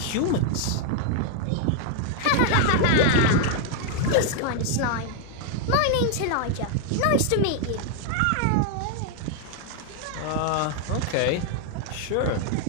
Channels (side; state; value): both; different; correlation 0.00